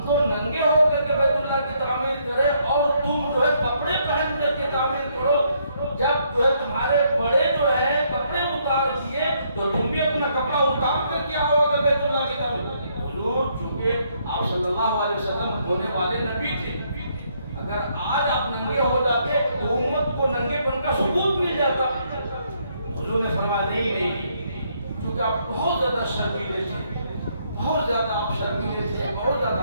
تو ننگے ہو کر کے بیت اللہ کی تعمیر کریں اور تم جو ہے کپڑے پہن کر کے تعمیر کرو، جب جو ہے تمہارے بڑے جو ہے کپڑے اتار دیے تو تم بھی اپنا کپڑا اتار کر کے آؤ گے بیت اللہ کی تعمیر۔ حضور چونکہ آپ صلی اللہ علیہ وسلم ہونے والے نبی تھے، اگر آج آپ ننگے ہو جاتے تو امت کو ننگے پن کا ثبوت مل جاتا۔ حضور نے فرمایا نہیں، چونکہ آپ بہت زیادہ شرمیلے تھے، بہت زیادہ آپ شرمیلے تھے، بہت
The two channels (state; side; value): inverted; both; correlation -0.72